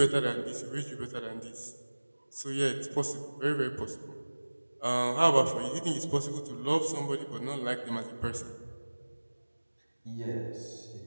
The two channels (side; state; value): both; inverted; correlation -1.00